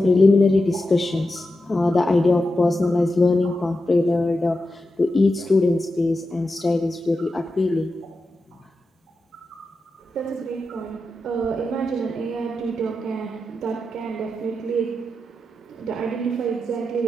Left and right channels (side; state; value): both; normal; correlation 0.90